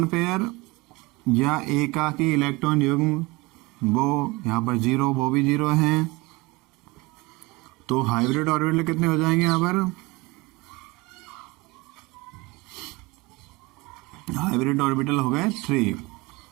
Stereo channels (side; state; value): left; quieter; 23.8 dB